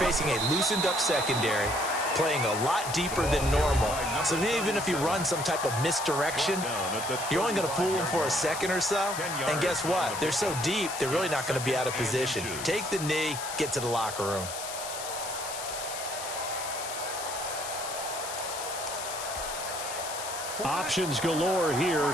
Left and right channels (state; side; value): noise; left; hiss, 7 dB below the sound